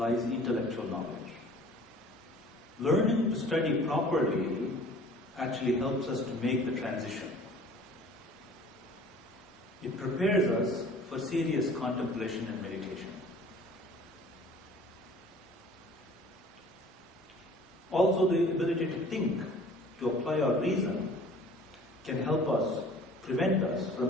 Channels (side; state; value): both; normal; correlation 0.48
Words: intellectual knowledge. Learning to study properly actually helps us to make the transition. It prepares us for serious contemplation and meditation. Also, the ability to think, to apply our reason, can help us, prevent us